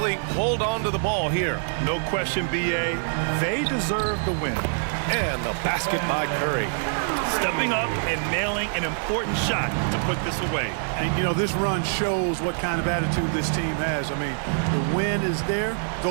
hold on to the ball here. No question, BA. They deserve the win. And the basket by Curry. Stepping up and nailing an important shot to put this away. And, you know, this run shows what kind of attitude this team has. I mean, the win is there.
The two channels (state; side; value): silent; left; digital silence